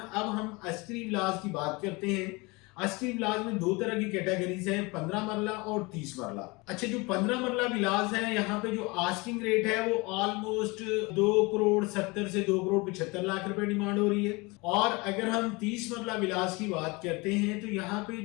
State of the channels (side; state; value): right; quieter; 25.6 dB